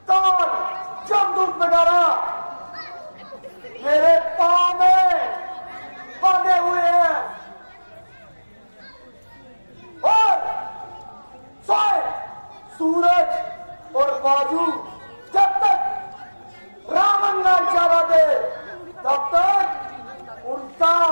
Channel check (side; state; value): both; inverted; correlation -1.00